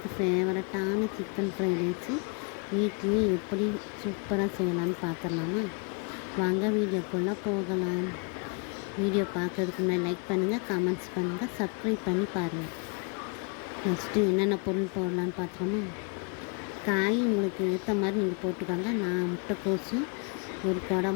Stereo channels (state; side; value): quieter; right; 35.2 dB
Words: ஃபேவரட்டான சிக்கன் ஃப்ரைட் ரைஸு வீட்லேயே எப்படி சூப்பராக செய்யலான்னு பார்த்துடலாமா? வாங்க வீடியோக்குள்ளே போகலாம். வீடியோ பார்க்கறதுக்கு முன்னாடி லைக் பண்ணுங்கள், கமெண்ட்ஸ் பண்ணுங்கள், சப்ஸ்கிரைப் பண்ணி பாருங்கள். ஃபஸ்ட்டு என்னென்ன பொருள் போடலான்னு பார்த்துக்கோமா? காய் உங்களுக்கு ஏற்ற மாதிரி நீங்கள் போட்டுக்கோங்க. நான் முட்டைக்கோஸு, ஒரு கொடை